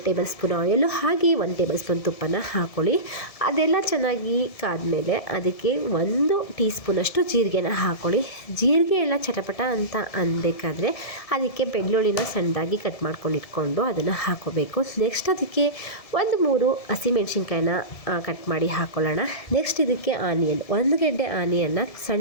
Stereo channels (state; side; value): late; right; 1.7 ms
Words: ಟೇಬಲ್ ಸ್ಪೂನ್ ಆಯಿಲು ಹಾಗೆ 1 ಟೇಬಲ್ ಸ್ಪೂನ್ ತುಪ್ಪನ ಹಾಕ್ಕೊಳ್ಳಿ. ಅದೆಲ್ಲ ಚೆನ್ನಾಗಿ ಕಾದ್ಮೇಲೆ ಅದಕ್ಕೆ 1 ಟೀ ಸ್ಪೂನಷ್ಟು ಜೀರಿಗೆನ ಹಾಕ್ಕೊಳ್ಳಿ. ಜೀರಿಗೆ ಎಲ್ಲ ಚಟಪಟ ಅಂತ ಅನ್ಬೇಕಾದ್ರೆ ಅದಕ್ಕೆ ಬೆಳ್ಳುಳ್ಳಿನ ಸಣ್ಣದಾಗಿ ಕಟ್ ಮಾಡ್ಕೊಂಡು ಇಟ್ಕೊಂಡು ಅದನ್ನು ಹಾಕೋಬೇಕು. ನೆಕ್ಸ್ಟ್ ಅದಕ್ಕೆ 1-3 ಹಸಿಮೆಣ್ಸಿನ್ಕಾಯಿನ ಕಟ್ ಮಾಡಿ ಹಾಕ್ಕೊಳ್ಳೋಣ. ನೆಕ್ಸ್ಟ್ ಇದಕ್ಕೆ ಆನಿಯನ್, 1 ಗೆಡ್ಡೆ ಆನಿಯನ್ನ